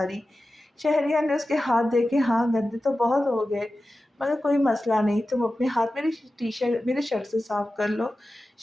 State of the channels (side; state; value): both; normal; correlation 0.94